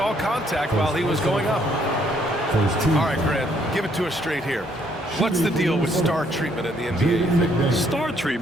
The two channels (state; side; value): normal; both; correlation 0.68